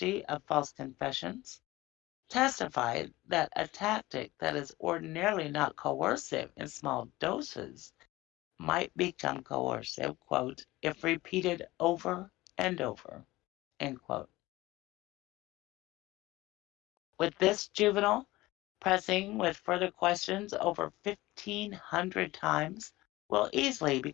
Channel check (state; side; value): quieter; right; 18.9 dB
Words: of false confessions, testified that a tactic that is ordinarily not coercive in small doses might become coercive, quote, if repeated over and over, end quote. With this juvenile pressing with further questions over 1,500 times will easily